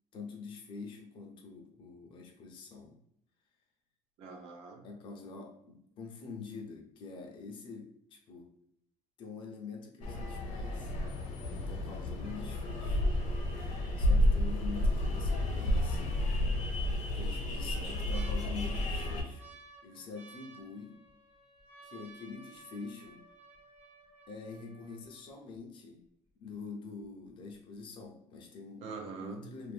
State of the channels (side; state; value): both; normal; correlation 0.66